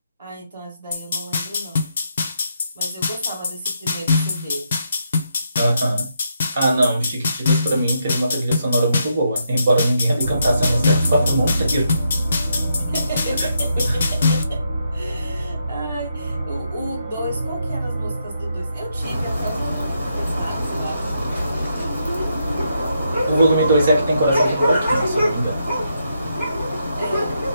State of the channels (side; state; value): both; inverted; correlation -0.79